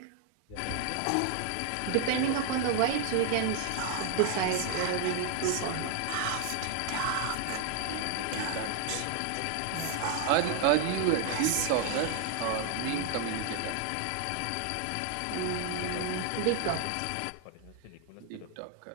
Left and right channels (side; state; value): both; different; correlation 0.01